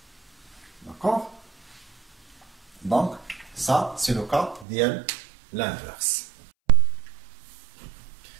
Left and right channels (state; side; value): drops out; left; at 4.7 s